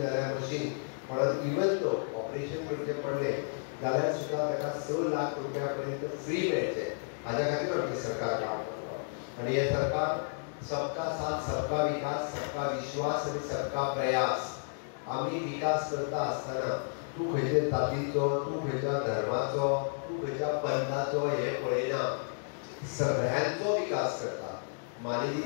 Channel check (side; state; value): right; silent; digital silence